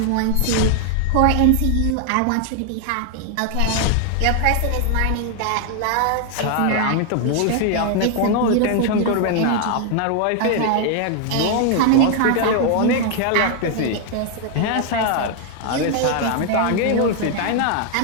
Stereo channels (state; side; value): different; both; correlation 0.00